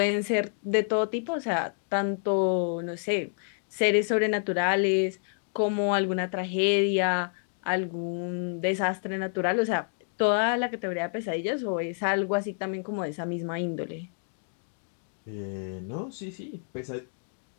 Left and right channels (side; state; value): right; silent; digital silence